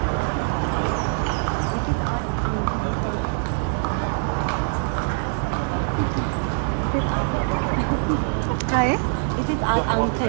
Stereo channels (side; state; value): left; silent; 63 dB below the other